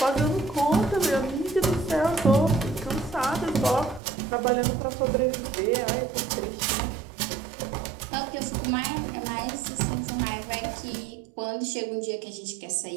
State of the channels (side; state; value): left; drops out; at 4.0 s